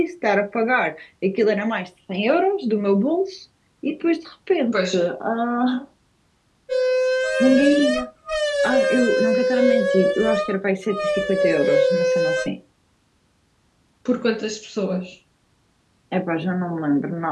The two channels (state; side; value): identical; both; correlation 1.00